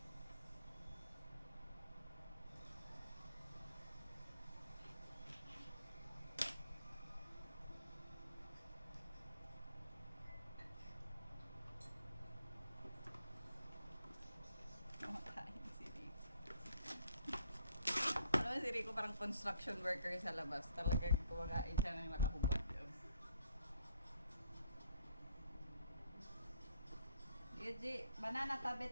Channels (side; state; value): both; inverted; correlation -0.65